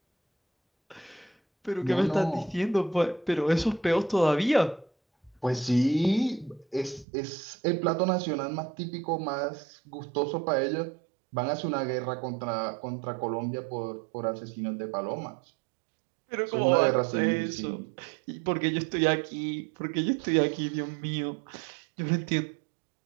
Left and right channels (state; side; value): drops out; left; at 7.1 s